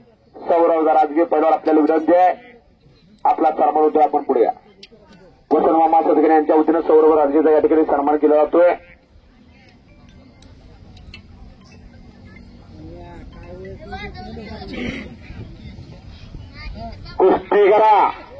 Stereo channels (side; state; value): both; identical; correlation 1.00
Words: सौरव राजगे पहिल्यावर आपल्याला विनंती आहे, आपला सन्मान होतोय. आपण पुढे या. वसंत मामा सदगरे यांच्या वतीनं सौरव राजगेचा या ठिकाणी सन्मान केला जातोय. कुस्ती करा